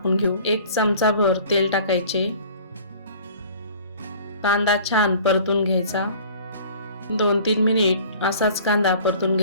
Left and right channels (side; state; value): both; inverted; correlation -0.48